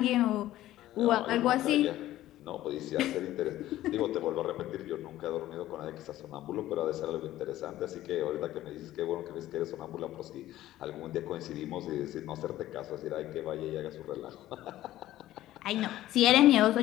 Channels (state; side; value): quieter; right; 14.5 dB